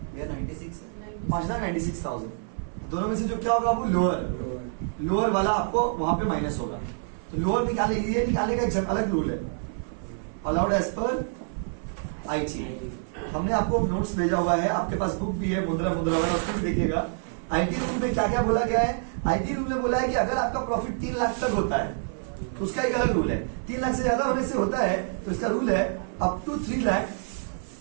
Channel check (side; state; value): left; silent; 58 dB below the other